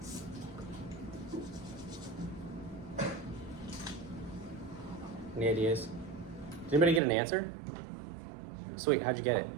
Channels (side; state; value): left; drops out; at 7.0 s